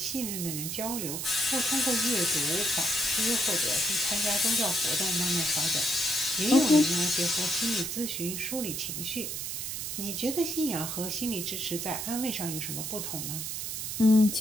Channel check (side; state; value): right; noise; hiss, 4 dB below the sound